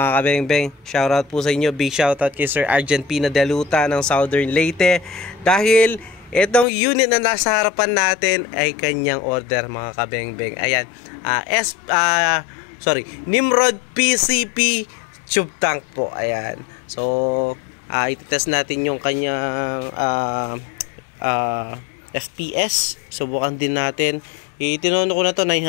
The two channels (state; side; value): drops out; right; at 6.7 s